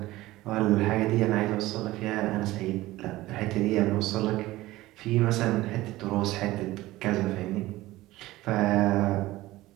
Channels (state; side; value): quieter; left; 17.5 dB